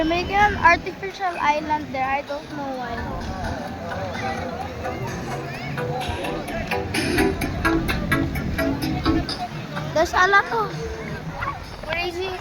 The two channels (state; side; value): identical; both; correlation 1.00